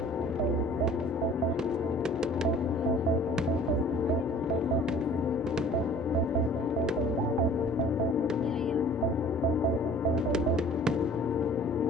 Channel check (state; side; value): normal; both; correlation 0.50